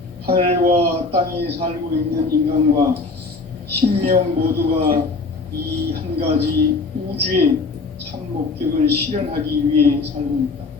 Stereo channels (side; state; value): right; quieter; 3.9 dB